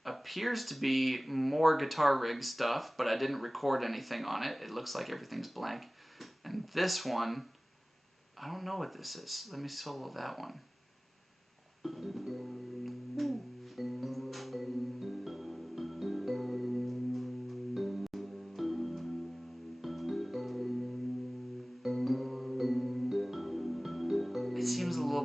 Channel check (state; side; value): normal; both; correlation 0.98